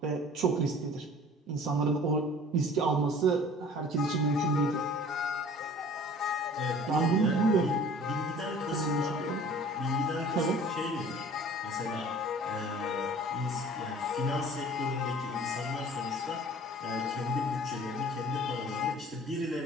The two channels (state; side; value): normal; both; correlation 0.47